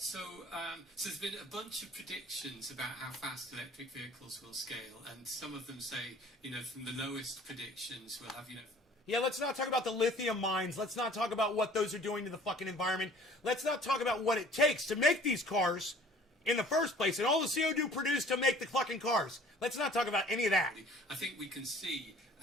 there's been a bunch of predictions about how fast electric vehicles will scale, and some of them say, from the lowest predictions, we'll have, Yeah, let's not talk about the lithium mines. Let's not talk about what those are doing to the fucking environment. Let's not talk about what it takes to make these cars in the first place and all the CO2 produced to make the fucking cars. Let's not talk about any of that. I think we can see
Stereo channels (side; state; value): both; normal; correlation 0.50